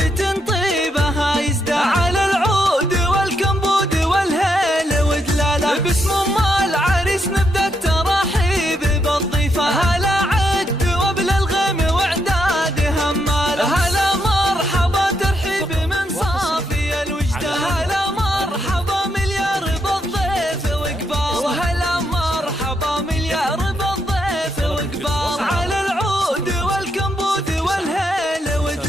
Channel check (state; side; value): normal; both; correlation 0.79